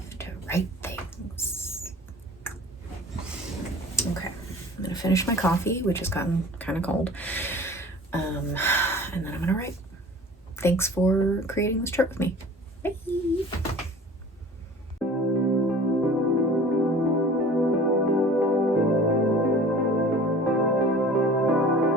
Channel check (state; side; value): normal; both; correlation 0.44